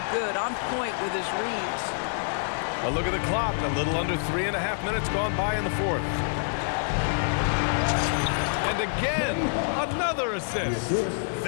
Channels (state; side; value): silent; right; 56 dB below the other